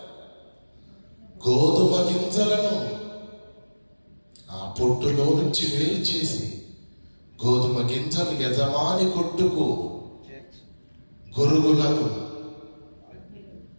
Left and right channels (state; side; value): inverted; both; correlation -1.00